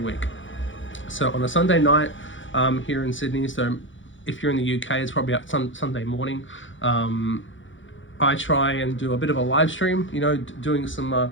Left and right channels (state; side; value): late; right; 0.56 ms